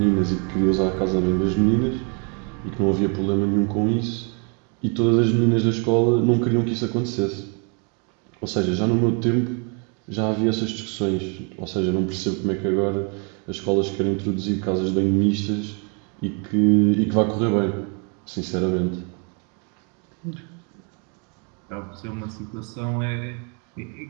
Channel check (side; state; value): left; quieter; 36.3 dB